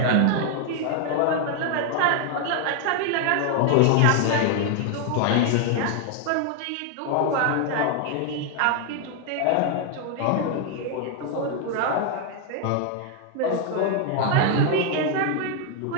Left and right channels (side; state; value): both; different; correlation 0.00